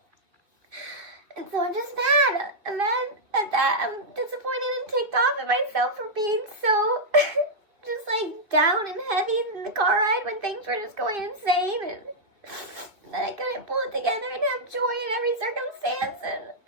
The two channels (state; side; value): late; left; 2.5 ms